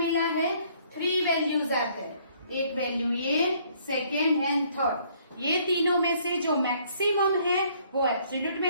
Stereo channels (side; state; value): both; inverted; correlation -0.63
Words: है? 3 values आते हैं, एक value ये, सेकेंड एंड थर्ड। ये तीनों में से जो मैक्सिमम है वो एब्सोल्यूट